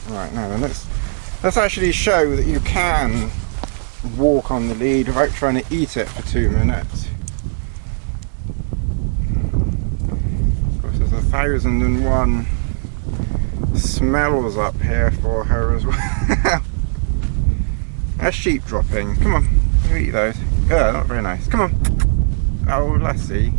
Right, now then, let's actually show that you can walk on the lead without trying to eat it for 2 minutes. Of course, there's 1001 smells up here for her as well. That's sheep dropping. Come on, you eat those. Yeah, not very nice. Come on. Oh, Lassie.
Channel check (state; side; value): silent; left; 67 dB below the other